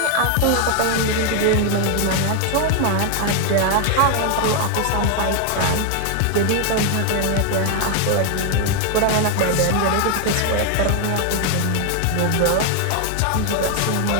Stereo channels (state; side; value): different; both; correlation 0.01